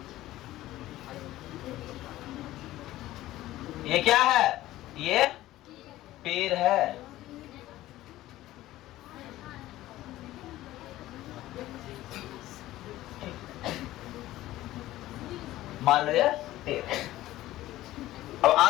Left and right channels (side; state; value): right; quieter; 15.6 dB